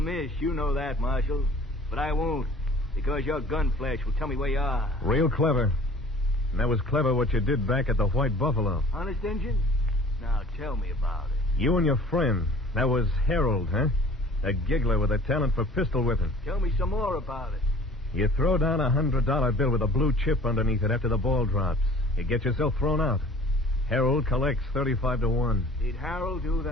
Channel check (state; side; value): normal; both; correlation 0.48